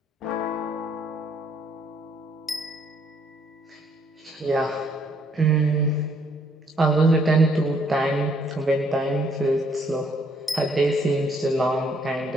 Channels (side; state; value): both; normal; correlation 0.67